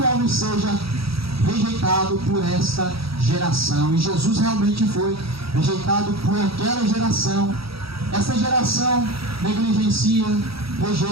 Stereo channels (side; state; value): left; late; 0.76 ms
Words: Homem seja rejeitado por esta geração. E Jesus realmente foi rejeitado por aquela geração Essa geração negligencia,